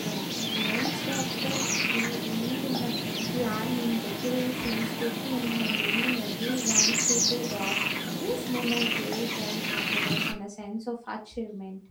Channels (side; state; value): both; identical; correlation 1.00